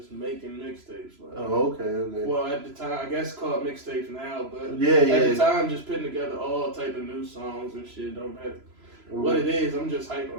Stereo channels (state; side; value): late; left; 3.0 ms